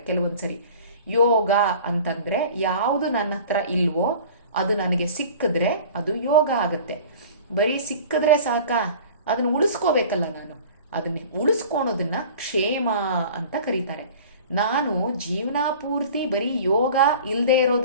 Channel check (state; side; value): inverted; both; correlation -0.42